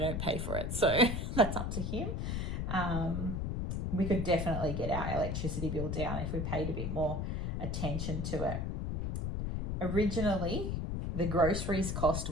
pay for it. So that's up to him. We could definitely get our electricity bill down if we paid a bit more attention to it. Originally, the groceries cost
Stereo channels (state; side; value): noise; left; rumble, 1 dB below the sound